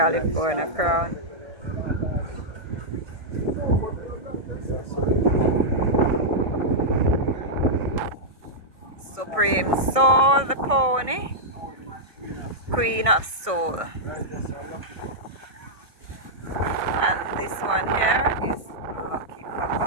Crown. Supreme Soul, the pony. Queen of Soul. And this one here is Lucky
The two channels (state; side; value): late; left; 1.6 ms